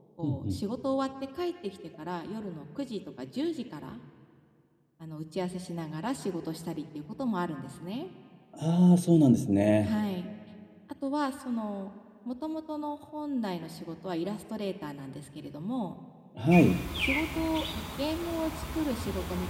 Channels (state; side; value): identical; both; correlation 1.00